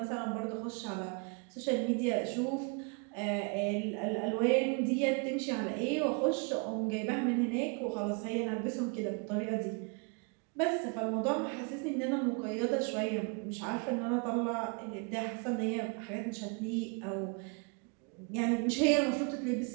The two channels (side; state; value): left; quieter; 34.5 dB